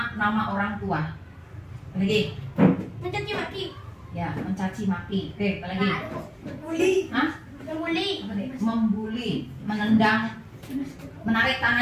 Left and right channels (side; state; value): both; identical; correlation 1.00